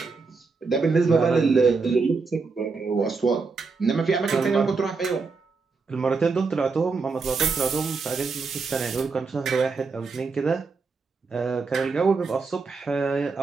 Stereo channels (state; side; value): quieter; left; 4.5 dB